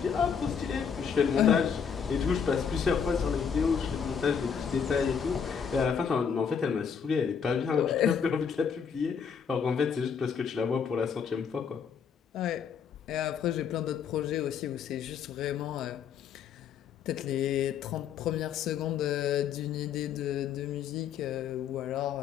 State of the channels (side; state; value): right; quieter; 6.9 dB